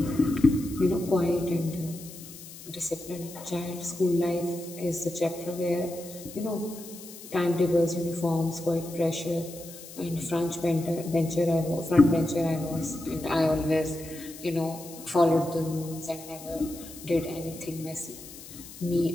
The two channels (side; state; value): left; noise; hiss, 16 dB below the sound